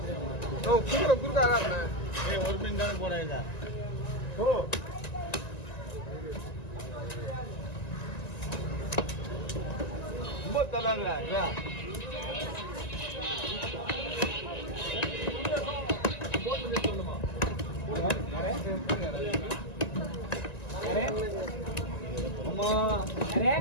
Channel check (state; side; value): late; right; 1.9 ms